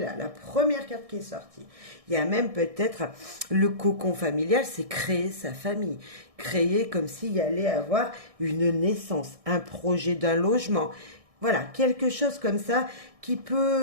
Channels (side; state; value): left; late; 1.6 ms